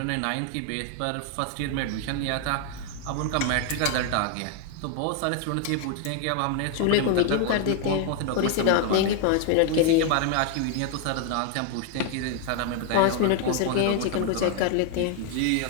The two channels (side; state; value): both; different; correlation 0.00